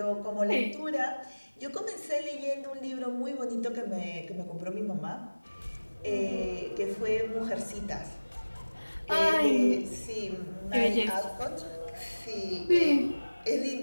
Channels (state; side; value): inverted; both; correlation -1.00